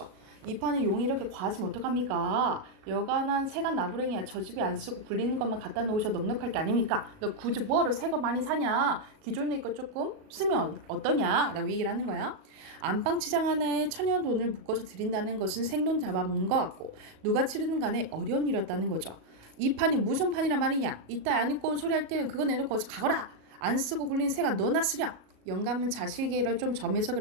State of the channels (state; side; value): late; left; 37 ms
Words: 이 판에 용이 이렇게 과하시면 어떡합니까? 여간한 세간 나부랭이야. 저 집에 안 쓰고 굴리는 것만 갖다 놓으셔도 넉넉할 게 아닙니까? 너 굳이 뭐하러 새 거 많이 사냐? 기존에 거 조금 쓰면 어떠냐? 라고 얘기를 하는 거야. 안방치장 하나에 1,000원 돈을 묶어서 드린다는 것은 생돈 잡아먹는 것 같고 누가 치르든 간에 어려운 일이었다는 거죠. 이 판이 무슨 판이란 말이냐? 이따 안 입고 온 소리 할 때는 그거 내놓고 어서 가거라. 안 쓰고 굴린 새가 너나 쓰렴. 영감은 자식이라 좀 점해서